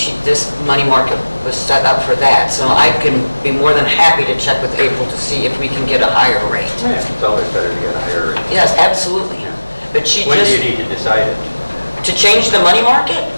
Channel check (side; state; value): both; inverted; correlation -1.00